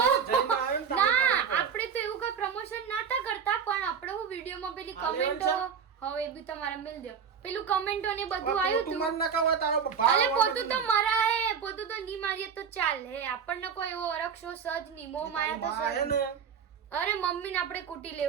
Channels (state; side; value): quieter; left; 7.0 dB